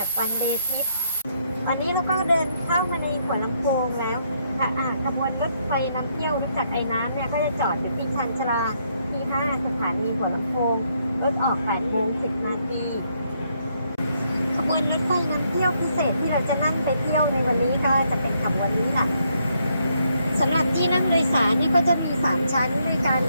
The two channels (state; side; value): inverted; both; correlation -0.74